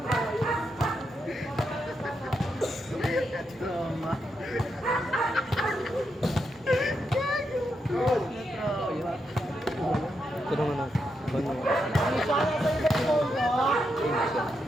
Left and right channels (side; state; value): both; normal; correlation 0.83